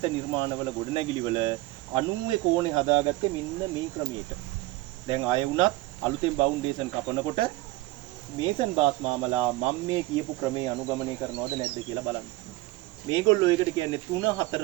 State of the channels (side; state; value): left; quieter; 19.7 dB